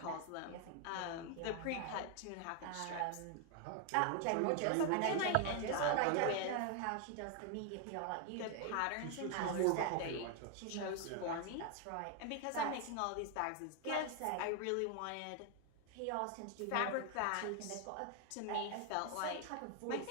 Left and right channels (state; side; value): different; both; correlation 0.00